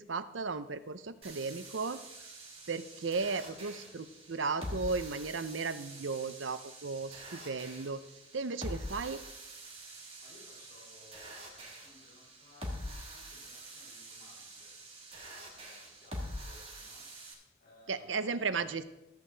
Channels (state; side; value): quieter; left; 3.4 dB